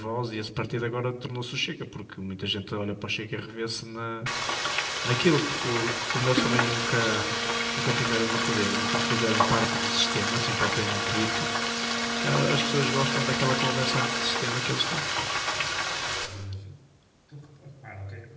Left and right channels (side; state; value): both; identical; correlation 1.00